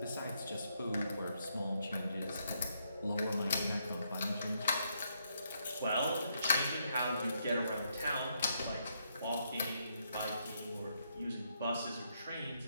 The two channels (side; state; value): both; inverted; correlation -0.76